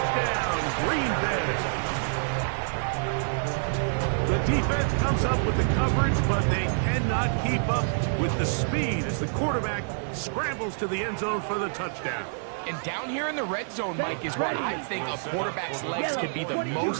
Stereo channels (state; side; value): silent; left; digital silence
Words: Green Bay. The defense comes up with the coverage, but they cannot keep up with the speed as the quarterback scrambles to the end zone for the touchdown. And down here in the red zone, Mike, is where I think a quarterback's legs can be the